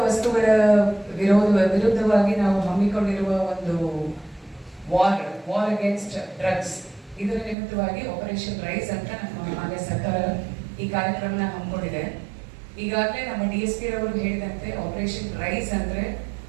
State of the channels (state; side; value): drops out; left; at 7.6 s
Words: ವಸ್ತುಗಳ ವಿರುದ್ಧವಾಗಿ ನಾವು ಹಮ್ಮಿಕೊಂಡಿರುವ ಒಂದು ವಾರ್ ಅಗೇನ್ಸ್ಟ್ ಡ್ರಗ್ಸ್, ಇದರ ನಿಮಿತ್ತವಾಗಿ ಆಪರೇಷನ್ ರೈಸ್ ಅಂತ ನಮ್ಮ ಮಾನ್ಯ ಸರ್ಕಾರ ಈ ಕಾರ್ಯಕ್ರಮನ ಹಮ್ಮಿಕೊಂಡಿದೆ. ಈಗಾಗಲೇ ನಮ್ಮ DSP ರವರು ಹೇಳಿದಂತೆ ಆಪರೇಷನ್ ರೈಸ್ ಅಂದ್ರೆ